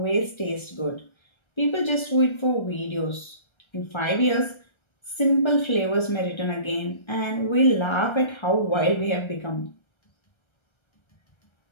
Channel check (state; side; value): late; right; 1.3 ms